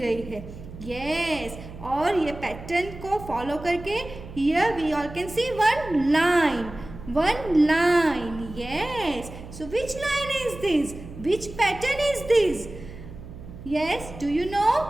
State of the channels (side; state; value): right; noise; hum, 14 dB below the sound